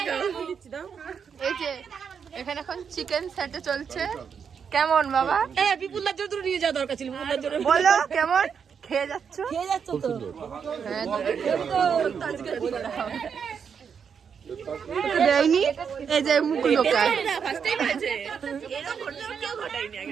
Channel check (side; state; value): left; quieter; 6.9 dB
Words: এই যে এখানে এখন চিকেন স্যাটে চলছে। কেমন বাবা? বিপুলার জন্য তুই নিয়ে যাওয়া দরকার ছিল, বিপুলার জন্য বলো কেমন খেয়ে যাচ্ছ? খেয়ে যাচ্ছ তো? হ্যাঁ, দেয়নি এই যে মুখ লোকায়। ফার্স্ট টাইম হয়েছে এরকম ঘটনা কেউ ঘটায়নি